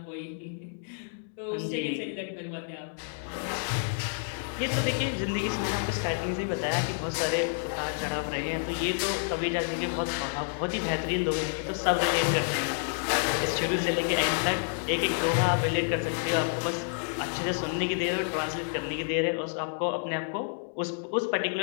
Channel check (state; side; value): silent; right; digital silence